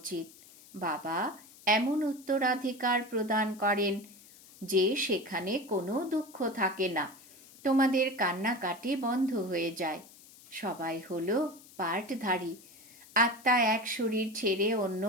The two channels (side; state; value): left; noise; hiss, 22 dB below the sound